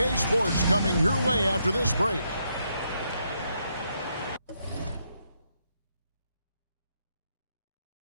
Sports coming your way after this break.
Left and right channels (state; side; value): inverted; both; correlation -0.78